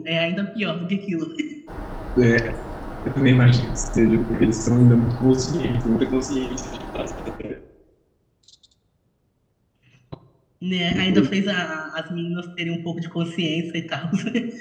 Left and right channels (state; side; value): identical; both; correlation 1.00